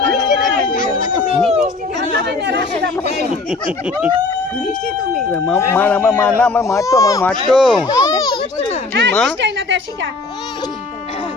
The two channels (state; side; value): quieter; right; 3.7 dB